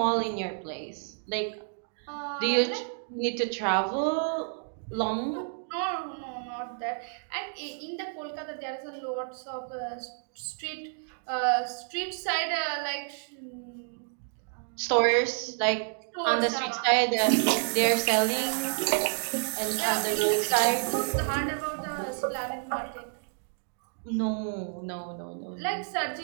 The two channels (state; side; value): silent; left; digital silence